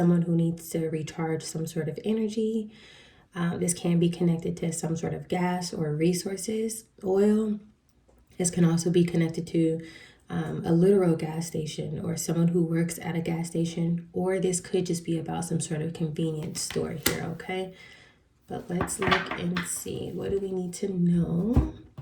who needs to recharge some sort of energy. This can be connected to some sort of gas or resources, oil. This can also be connected to a literal gas station or someone who works at a gas station, or this could just be about some sort of convenience store here, okay? But let's look and see, what do we need to know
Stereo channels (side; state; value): both; identical; correlation 1.00